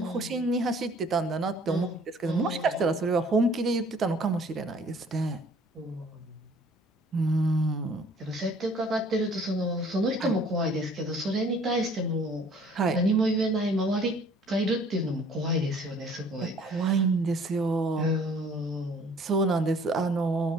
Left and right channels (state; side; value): normal; both; correlation 0.56